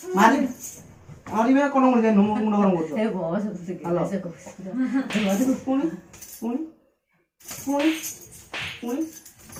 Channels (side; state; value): both; identical; correlation 1.00